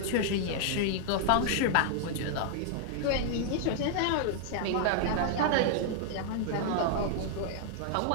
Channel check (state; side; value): different; both; correlation -0.01